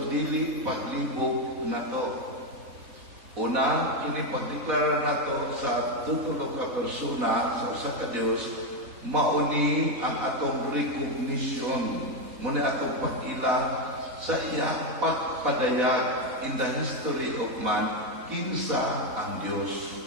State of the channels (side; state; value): left; late; 4.2 ms